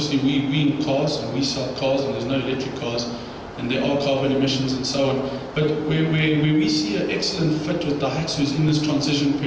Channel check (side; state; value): both; identical; correlation 1.00